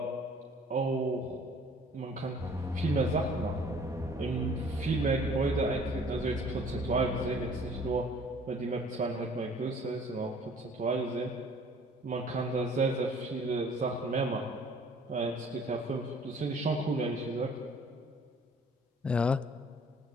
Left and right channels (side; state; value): both; normal; correlation 0.54